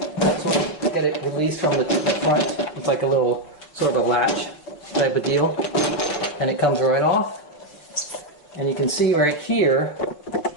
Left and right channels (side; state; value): right; late; 6.1 ms